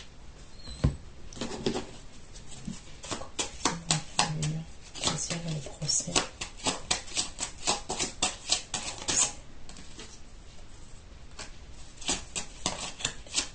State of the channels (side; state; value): both; identical; correlation 1.00